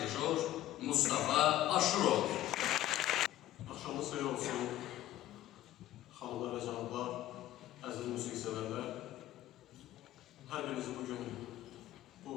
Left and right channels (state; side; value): quieter; right; 13.9 dB